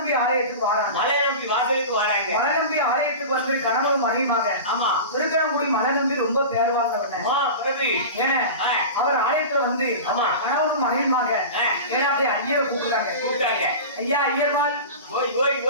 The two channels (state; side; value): inverted; both; correlation -0.30